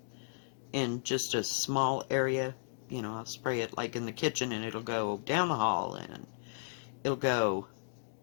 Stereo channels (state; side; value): silent; right; digital silence